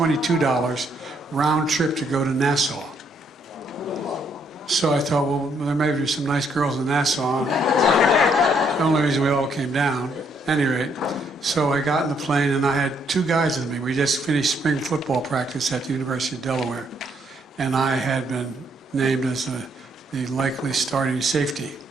round trip to go to Nassau. So I thought, well, there may be some nice girls in Nassau. The only reason we all came down. At any rate, so I got in the plane, and I had 2 guys with me. We just finished spring football practice at the University of Delaware, and I had been named as the likely starting safety.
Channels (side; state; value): both; normal; correlation 0.71